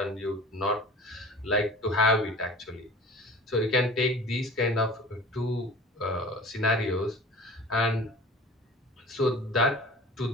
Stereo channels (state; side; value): normal; both; correlation 0.42